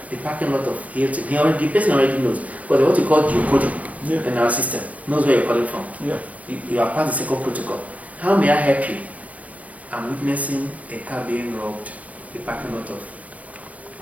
the parking lot of Hilton. The person already knows. Because what you call geocoding in our system knows where you're calling from. Yeah. You have passed the second protocol. How may I help you? I'm witnessing a car being robbed, the parking lot of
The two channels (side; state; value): left; late; 0.068 ms